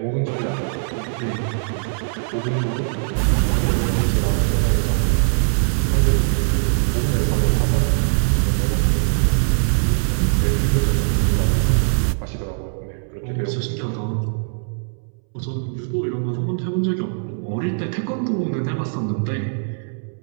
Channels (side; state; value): left; silent; 65 dB below the other